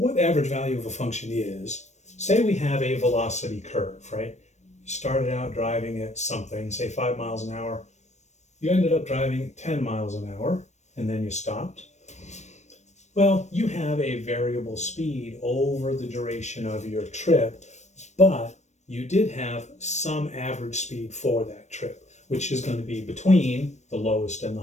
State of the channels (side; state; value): right; late; 0.34 ms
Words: average value of a function is, say we have a velocity curve, right? You started out driving at something, say 5 miles an hour. You ended up driving 10 miles an hour, and then you stopped. Well, you have a variable speed over the duration of your trip, but you did have some average speed for that trip, which is going to be between the lowest and the